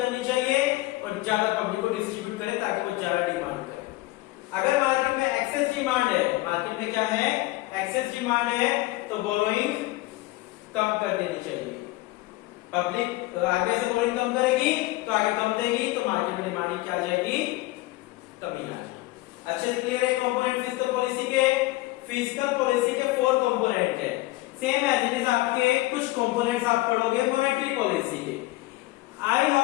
चाहिए और ज्यादा पब्लिक को डिस्ट्रीब्यूट करे ताकि वो ज्यादा डिमांड करे। अगर मार्केट में एक्सेस डिमांड है, मार्केट में क्या है? एक्सेस डिमांड है, तो बोरोइंग कम कर देनी चाहिए। पब्लिक आरबीआई से बोरोइंग कम करेगी तो आगे कम देगी, तो मार्केट में डिमांड क्या आ जाएगी? कमी आ जाएगी। अच्छे से क्लियर है कंपोनेंट फिस्कल पॉलिसी के? फिस्कल पॉलिसी के 4 कंपोनेंट है, सेम एज इट इज आपके कुछ कंपोनेंट्स आप पढ़ोगे मॉनेटरी पॉलिसी के। आई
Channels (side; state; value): right; quieter; 19.6 dB